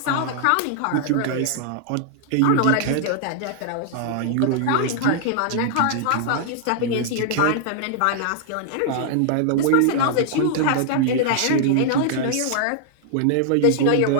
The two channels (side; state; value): both; different; correlation -0.01